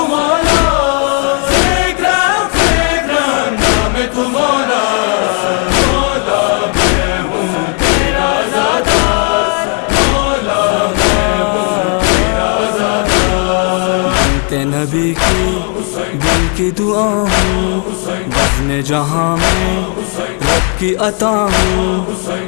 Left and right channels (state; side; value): quieter; right; 39.6 dB